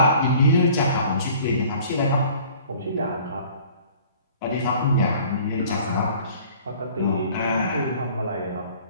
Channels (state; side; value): inverted; both; correlation -0.50